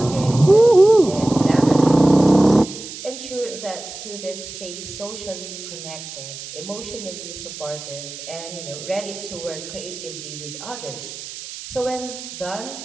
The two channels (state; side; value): noise; right; hiss, 12 dB below the sound